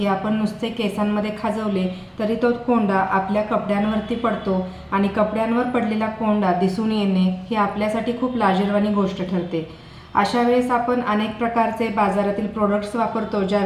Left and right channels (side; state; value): both; identical; correlation 1.00